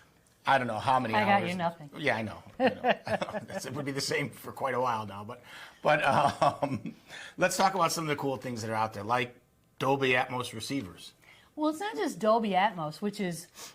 I don't know how many hours. I got you nothing. Yeah, I know. It would be the same for quite a while now. But let's talk about some of the cool things that are out there, like Dolby Atmos receivers. Well, it's not just Dolby Atmos, which is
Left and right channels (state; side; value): identical; both; correlation 1.00